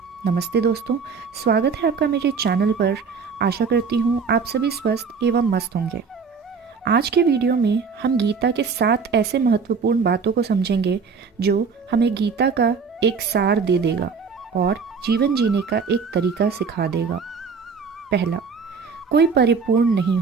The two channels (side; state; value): left; quieter; 5.5 dB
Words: नमस्ते दोस्तों, स्वागत है आपका मेरे चैनल पर। आशा करती हूँ आप सभी स्वस्थ एवं मस्त होंगे। आज के वीडियो में हम गीता के 7 ऐसे महत्वपूर्ण बातों को समझेंगे जो हमें गीता का एक सार दे देगा और जीवन जीने का एक तरीका सिखा देगा। पहला, कोई परिपूर्ण नहीं